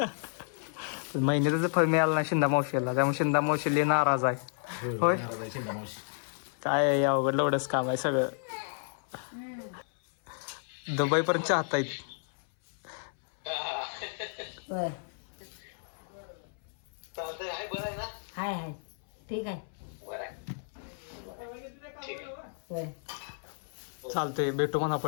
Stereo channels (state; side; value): silent; right; 57 dB below the other